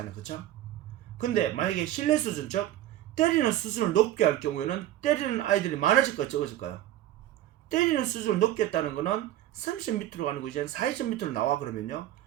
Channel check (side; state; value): left; quieter; 13.3 dB